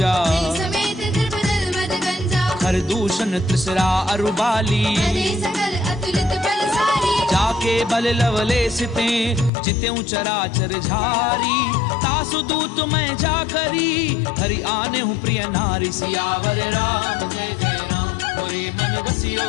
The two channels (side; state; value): right; drops out; at 9.5 s